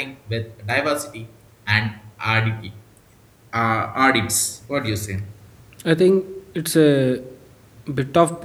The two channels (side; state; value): both; identical; correlation 1.00